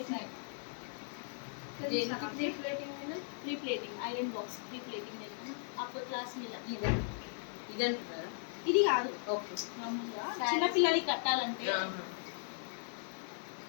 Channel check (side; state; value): right; silent; digital silence